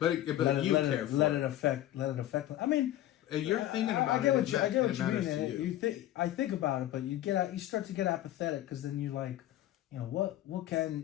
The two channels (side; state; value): right; quieter; 13.7 dB